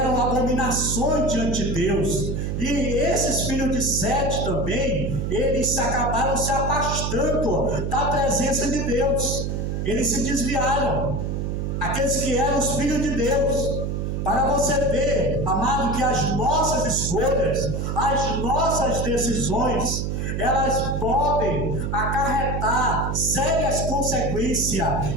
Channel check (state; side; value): noise; right; hum, 1 dB below the sound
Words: abominações diante de Deus. E esses filhos de Sete também, eles acabaram se afastando da presença de Deus. Eles se desviaram, aqueles que eram os filhos de Deus. Para você ver, amado, que as nossas escolhas, as nossas decisões, elas podem acarretar sérias consequências.